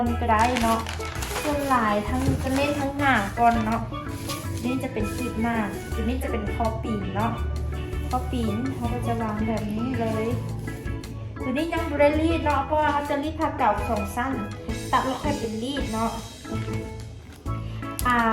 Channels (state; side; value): identical; both; correlation 1.00